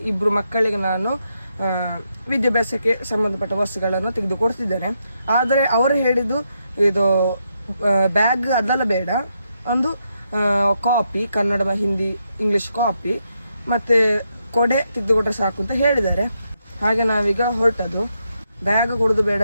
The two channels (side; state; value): both; inverted; correlation -0.81